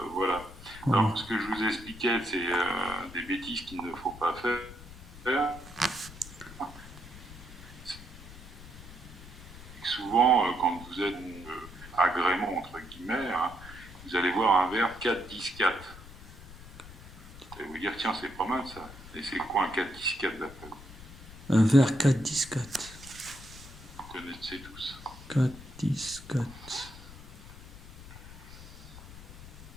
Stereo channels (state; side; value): noise; left; rumble, 16 dB below the sound